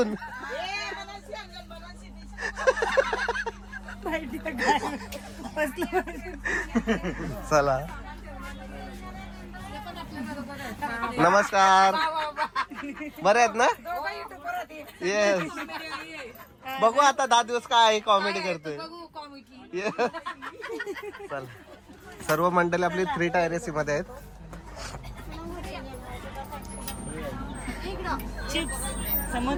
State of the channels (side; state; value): both; identical; correlation 1.00